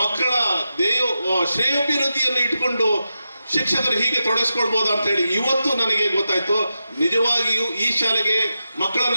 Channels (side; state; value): both; inverted; correlation -0.90